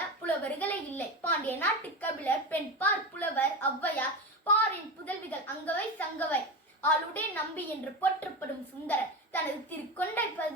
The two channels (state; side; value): normal; both; correlation 0.21